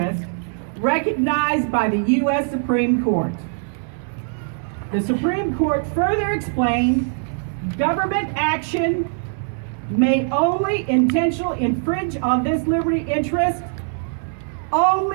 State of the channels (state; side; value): silent; left; 65 dB below the other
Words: recognized by the U.S. Supreme Court. The Supreme Court further explained government action may only intentionally infringe on this liberty interest